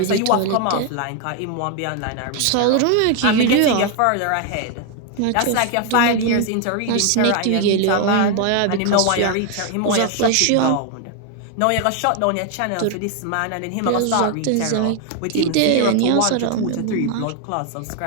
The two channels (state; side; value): different; both; correlation 0.01